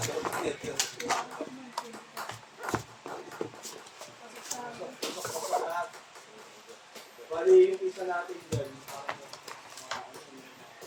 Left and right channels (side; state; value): both; identical; correlation 1.00